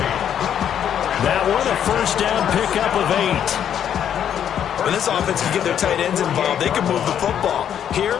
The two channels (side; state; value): right; quieter; 9.3 dB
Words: That one, a first down pickup of 8. When this offense can get their tight ends involved, they can move the football. Here,